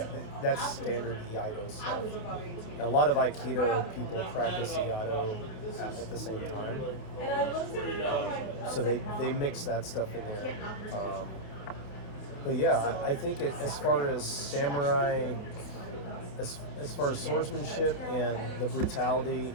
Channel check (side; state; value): right; late; 28 ms